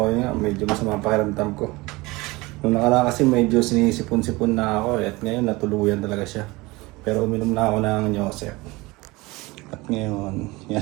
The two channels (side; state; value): left; quieter; 22.4 dB